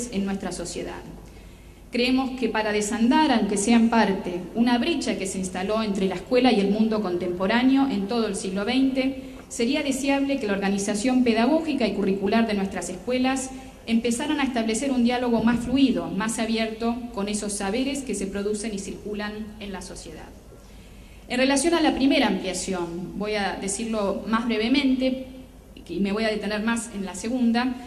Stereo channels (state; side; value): identical; both; correlation 1.00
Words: en nuestra sociedad. Creemos que para desandar, aunque sea en parte, una brecha que se instaló entre la escuela y el mundo contemporáneo en todo el siglo XX, sería deseable que la organización pedagógica y curricular de nuestras escuelas empezaran a establecer un diálogo más fluido, más abierto con esos saberes que se producen y circulan en la sociedad. En relación a la primera ampliación, voy a decirlo más brevemente y me voy a detener más en la segunda,